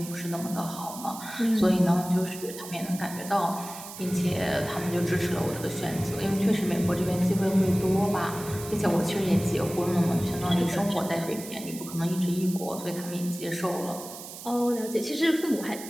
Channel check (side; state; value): right; noise; hiss, 13 dB below the sound